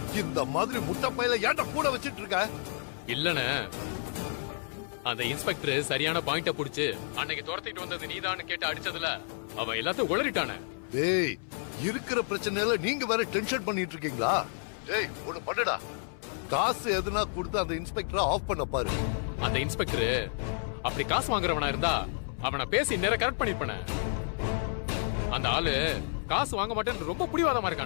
இந்த மாதிரி முட்டை பையில ஏன்டா கூட வச்சிட்டு இருக்க? இல்லண்ணே, அந்த இன்ஸ்பெக்டர் சரியான பாயிண்ட புடிச்சு அன்னைக்கு துரத்திட்டு வந்தது நீதான்னு கேட்டு அடிச்சதுல அவன் எல்லாத்தையும் உளறிட்டானே. டேய், இருக்கிற பிரச்சனையில நீங்க வேற டென்ஷன் பண்ணிட்டு இருக்கீங்களா? டேய், ஒண்ணு பண்ணுடா, காசு எதுனா கொடுத்து அந்த இன்ஸ்பெக்டரை ஆஃப் பண்ண பாரு. அந்த இன்ஸ்பெக்டர் அப்படி காசு வாங்குறவனா இருந்தா அவனை பேசி நேர கரெக்ட் பண்ணிருப்பானே. அந்த ஆளு காசு வாங்க மாட்டேன்னு ரொம்ப புடிவாதமா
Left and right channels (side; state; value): right; silent; 57 dB below the other